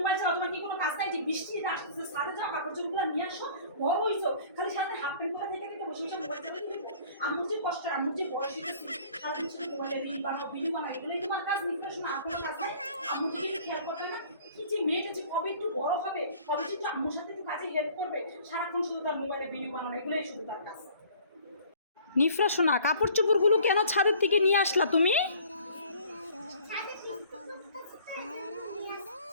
চালাও, তোমার কি কোনো কাজ নাই? যে বৃষ্টি আসতেছে, ছাদে যাও, কাপড় চোপড়গুলো নিয়ে আসো, বড় হইছো, খালি সাথে হাফ প্যান্ট করে থেকে থেকে বসে বসে মোবাইল চালাতে। আম্মুর যে কষ্ট, আম্মুর যে বয়স হয়েছে, সারাদিন শুধু মোবাইলে রিল বানাও, ভিডিও বানাও, এগুলোই তোমার কাজ। নির্দেশনা আর কোনো কাজ নাই? আম্মুর যদি খেয়াল করবে না, কি যে মেয়েটা যে কবে একটু বড় হবে, কবে কিন্তু আম্মুর সাথে একটু কাজে হেল্প করবে, সারাক্ষণ শুধু তার মোবাইলে ভিডিও বানানো, এগুলোই শুধু তার কাজ। নিফরা শোনা, কাপড় চোপড়গুলো কেন ছাদের থেকে নিয়ে আসলা তুমি?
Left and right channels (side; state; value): both; inverted; correlation -0.51